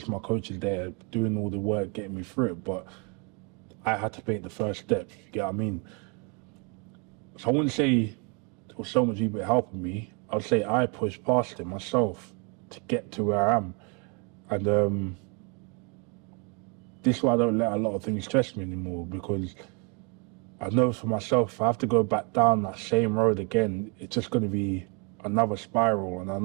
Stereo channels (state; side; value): quieter; left; 34.2 dB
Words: my coach is there doing all the work, getting me through it, but I had to take the first step, you get what I mean? So I wouldn't say there was so much people helping me. I would say I pushed past it myself to get to where I am. And this is why I don't let a lot of things stress me anymore, because I know for myself, if I have to go back down that same road again, it's just going to be another spiral, and I